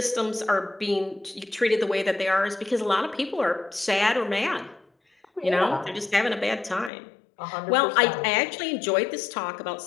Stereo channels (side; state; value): right; drops out; at 6.9 s